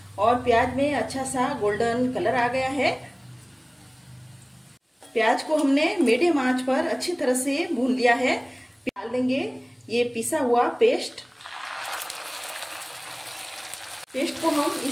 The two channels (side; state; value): both; identical; correlation 1.00